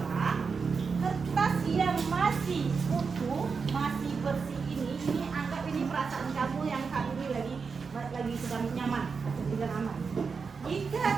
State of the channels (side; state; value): left; quieter; 5.3 dB